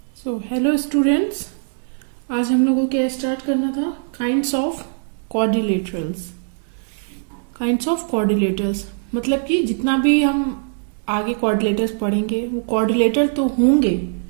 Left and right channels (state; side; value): silent; left; digital silence